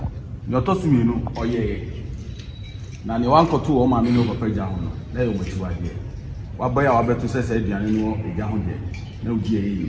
your Tosumino, or ye. Now, the 1 or 2 or Mamino of Pejano, there you were. What boy I bet to say, Diano, a young day. No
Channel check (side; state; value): both; identical; correlation 1.00